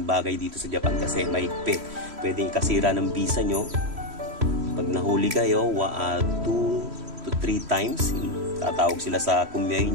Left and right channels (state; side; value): late; left; 3.1 ms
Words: bagay dito sa Japan kasi mahigpit. Pwedeng ikasira ng visa nyo. Pag nahuli kayo, 2 to 3 times, tatawag sila sa kumyay